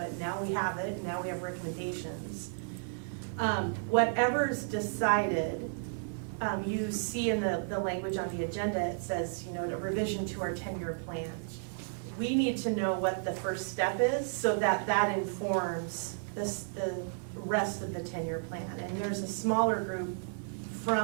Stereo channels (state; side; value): silent; left; 56 dB below the other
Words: Now we have it, and now we have recommendations. Whatever's decided, you see in the language on the agenda, it says, a revision to our 10-year plan. We need to know what the first step is, so that informs the rest of the 10-year plan. And there's a smaller group